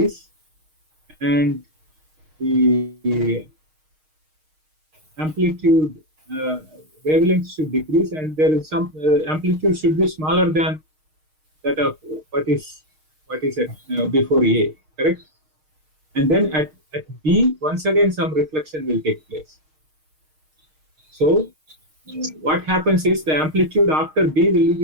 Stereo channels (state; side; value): late; left; 6.4 ms